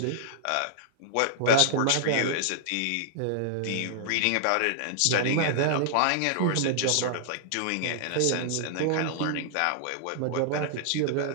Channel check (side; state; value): both; different; correlation -0.01